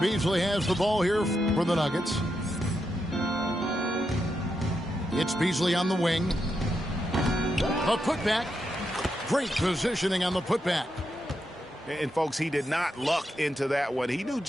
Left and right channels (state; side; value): normal; both; correlation 0.84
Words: has the ball here for the Nuggets. It's Beasley on the wing. A putback. Great positioning on the putback. And, folks, he did not luck into that one. He knew